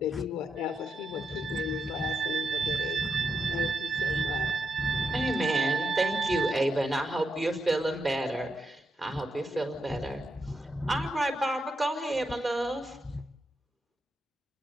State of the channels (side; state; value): both; normal; correlation 0.82